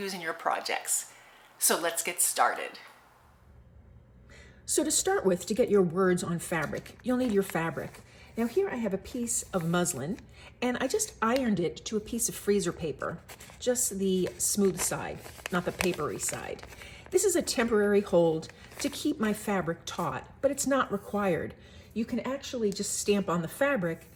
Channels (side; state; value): both; identical; correlation 1.00